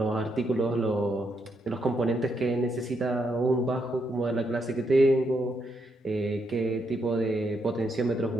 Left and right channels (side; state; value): both; normal; correlation 0.79